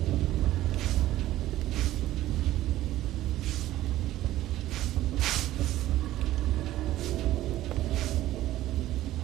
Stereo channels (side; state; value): left; quieter; 14.7 dB